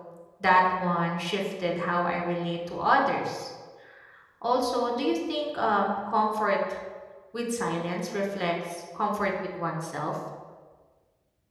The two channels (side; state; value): both; identical; correlation 1.00